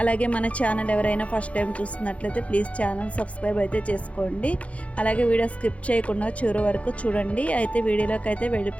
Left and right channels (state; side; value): late; right; 0.064 ms